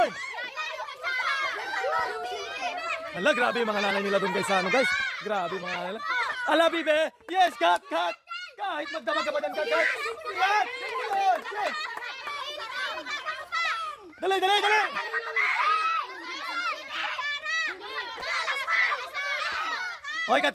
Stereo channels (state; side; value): identical; both; correlation 1.00